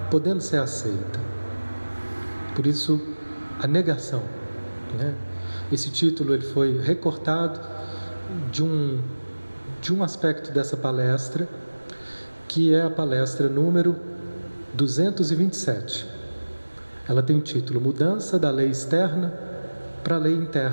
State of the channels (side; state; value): both; inverted; correlation -1.00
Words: podendo ser aceita. Por isso, a negação, né? Esse título ele foi recortado de um aspecto dessa palestra, que é a palestra número 227. Ela tem o título Mudança da Lei Externa para a Lei